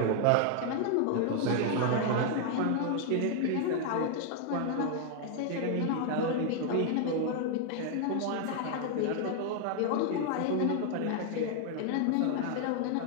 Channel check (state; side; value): different; both; correlation 0.00